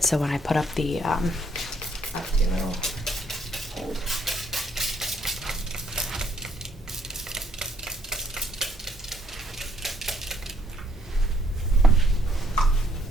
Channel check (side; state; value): both; normal; correlation 0.68